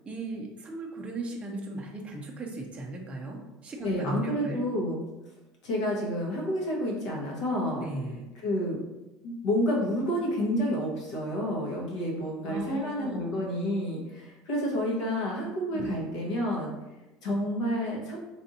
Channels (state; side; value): normal; both; correlation 0.40